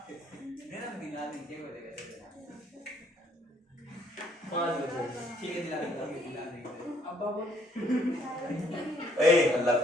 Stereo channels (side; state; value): both; normal; correlation 0.66